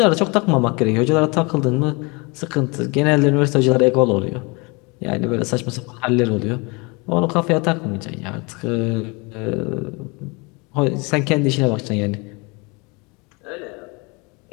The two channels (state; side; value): quieter; right; 28.6 dB